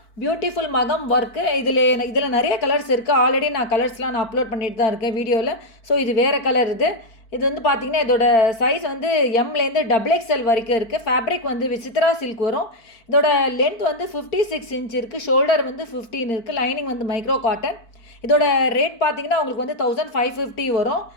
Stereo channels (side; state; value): right; late; 4.5 ms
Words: பியூட்டிஃபுல் மகம் ஒர்க்கு. இதில் நிறைய கலர்ஸ் இருக்குது. ஆல்ரெடி நான் கலர்ஸ்லாம் அப்லோட் பண்ணிட்டு தான் இருக்கேன் வீடியோவில். ஸோ இது வேறு கலர். இது வந்து பார்த்திங்கன்னா இதோட சைஸ் வந்து எம்லேருந்து XXL வரைக்கும் இருக்குது. ஃபேப்ரிக் வந்து விசித்ரா சில்க் வரும். இதோட லென்த் வந்து 56 இன்ச் இருக்குது. ஷோல்டர் வந்து 15 இருக்குது. லைனிங் வந்து மைக்ரோ காட்டன். இதோட ரேட் பார்த்திங்கன்னா உங்களுக்கு வந்து 1550 வரும்.